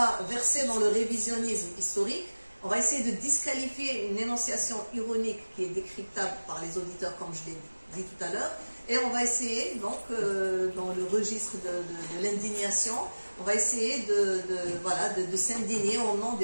verser dans le révisionnisme historique. On va essayer de disqualifier une énonciation ironique qui est décryptable par les auditeurs, comme je l'ai dit tout à l'heure. Et on va essayer, donc, dans le registre de l'indignation, on va essayer de s'indigner au nom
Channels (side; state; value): both; inverted; correlation -1.00